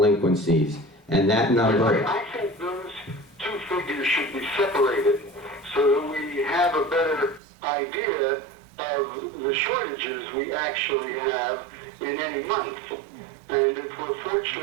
And that number... I think those two figures should be separated so that we have a better idea of the shortages we actually have in any month. And if we're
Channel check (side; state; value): left; drops out; at 7.4 s